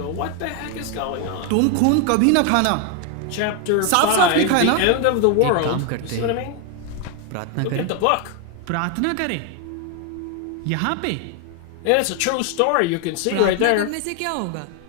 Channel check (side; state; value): both; different; correlation 0.01